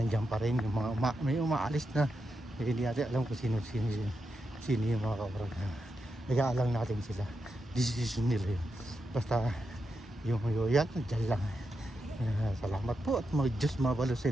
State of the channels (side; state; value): both; normal; correlation 0.86